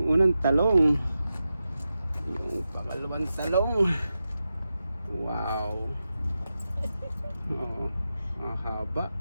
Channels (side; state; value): both; inverted; correlation -0.90